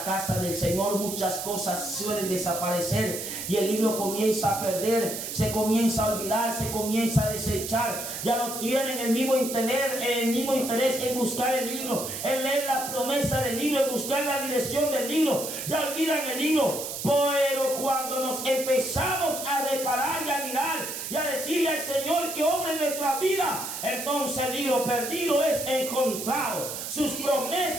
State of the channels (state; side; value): noise; right; hiss, 6 dB below the sound